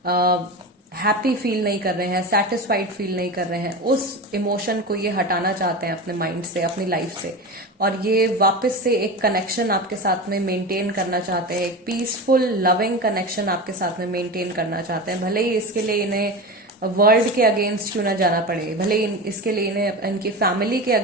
हैप्पी फील नहीं कर रहे हैं, सेटिस्फाइड फील नहीं कर रहे हैं। उस इमोशन को ये हटाना चाहते हैं अपने माइंड से, अपनी लाइफ से, और ये वापस से एक कनेक्शन आपके साथ में मेंटेन करना चाहते हैं, एक पीसफुल लविंग कनेक्शन आपके साथ में मेंटेन करना चाहते हैं। भले ही इसके लिए इन्हें वर्ल्ड के अगेंस्ट क्यों ना जाना पड़े, भले इसके लिए इन्हें इनकी फैमिली के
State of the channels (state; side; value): normal; both; correlation 0.25